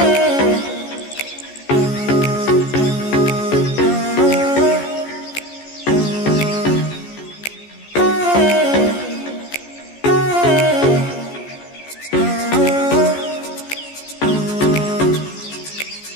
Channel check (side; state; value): right; late; 14 ms